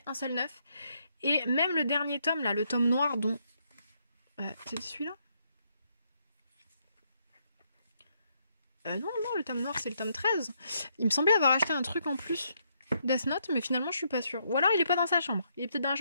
un seul neuf, et même le dernier tome là, le tome noir dont... c'est celui-là non, le tome noir c'est le tome 13, il me semblait avoir acheté un truc en plus... Death Note, mais finalement je suis pas sûre. Ou alors il est pas dans sa chambre, il est peut-être dans la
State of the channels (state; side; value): inverted; both; correlation -0.75